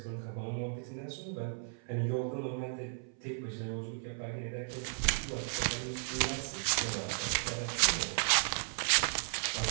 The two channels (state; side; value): silent; left; 54 dB below the other